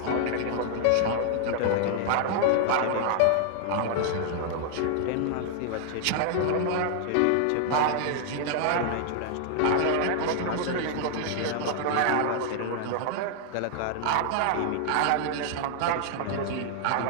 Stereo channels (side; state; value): both; different; correlation 0.00